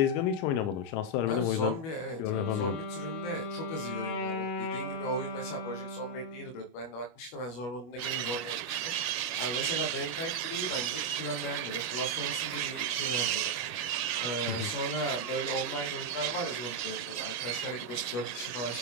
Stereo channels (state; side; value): late; right; 25 ms